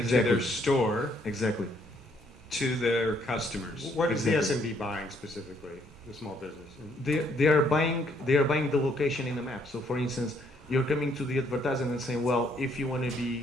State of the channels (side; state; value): both; normal; correlation 0.68